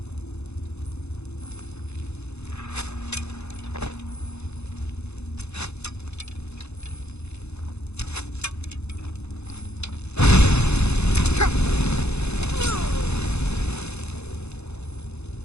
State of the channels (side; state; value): right; late; 0.81 ms